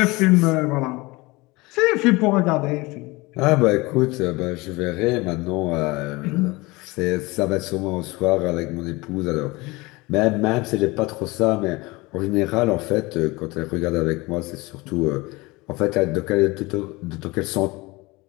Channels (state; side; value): quieter; right; 23.0 dB